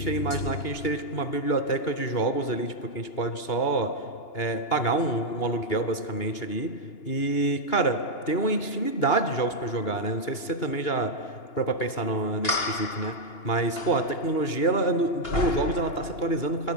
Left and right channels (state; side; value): late; right; 2.8 ms